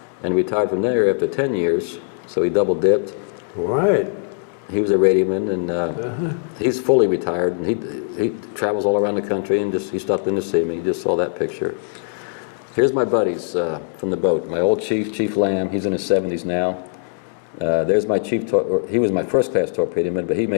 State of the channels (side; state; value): right; silent; digital silence